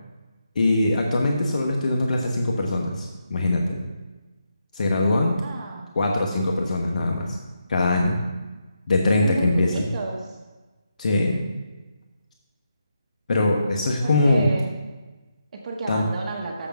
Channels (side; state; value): both; inverted; correlation -0.83